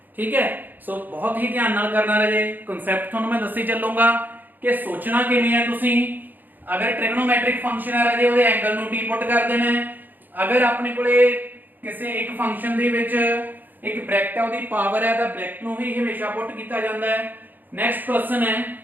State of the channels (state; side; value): late; left; 0.087 ms